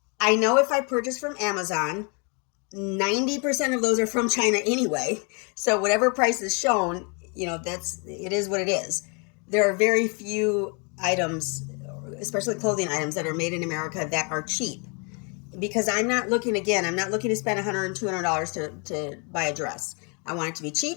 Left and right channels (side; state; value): right; quieter; 35.0 dB